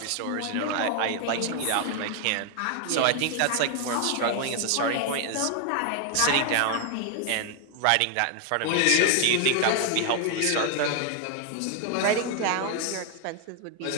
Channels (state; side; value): different; both; correlation 0.00